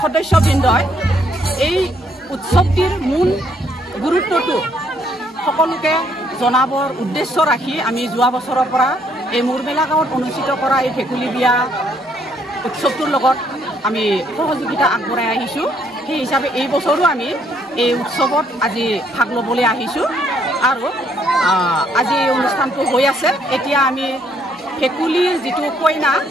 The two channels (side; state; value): both; normal; correlation 0.69